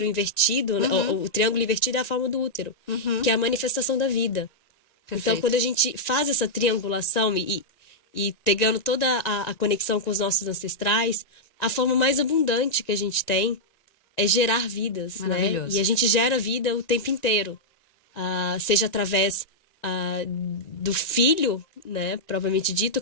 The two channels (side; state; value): right; late; 1.7 ms